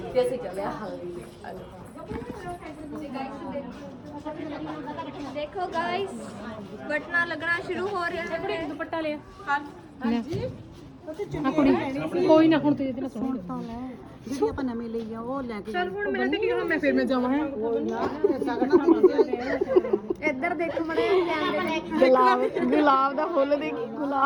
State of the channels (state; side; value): identical; both; correlation 1.00